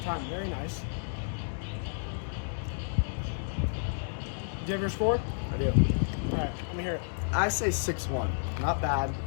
time. Very nice. Do you have your score? I do. All right, let me hear it. I say 6-1. Not bad.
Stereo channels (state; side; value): silent; right; 57 dB below the other